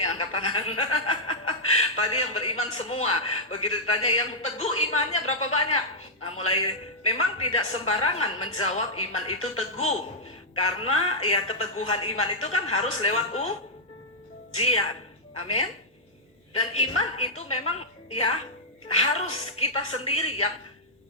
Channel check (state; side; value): normal; both; correlation -0.08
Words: angkat tangan. Tadi yang beriman semua, begitu ditanya yang teguh imannya berapa banyak? Nah, memang tidak sembarangan menjawab iman itu teguh, karena ya keteguhan iman itu kan harus lewat ujian. Amin. Dan iman itu memang ya harus kita sendiri yang